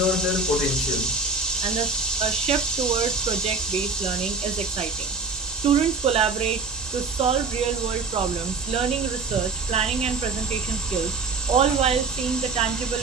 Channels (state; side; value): quieter; left; 4.2 dB